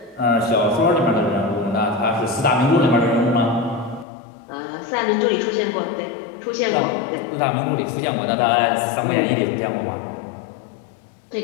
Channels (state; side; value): drops out; right; at 4.0 s